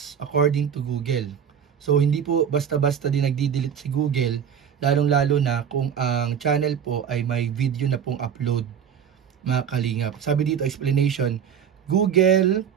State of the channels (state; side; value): quieter; left; 8.1 dB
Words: according to Google. So hindi po basta-basta din nagdi-delete si Google, lalong-lalo na kung ang channel po ay may video na pong upload mga Kalingap. Sabi dito, explanation, Google